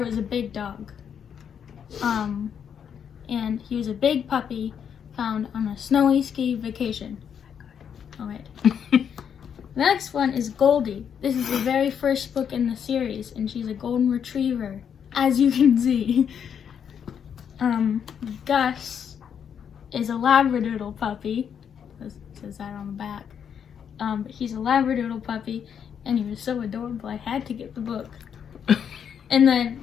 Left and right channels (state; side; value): quieter; right; 7.9 dB